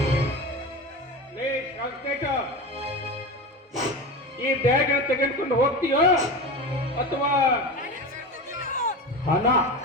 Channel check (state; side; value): normal; both; correlation 0.26